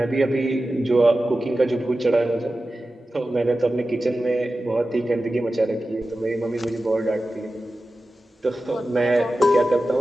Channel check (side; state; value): both; normal; correlation 0.94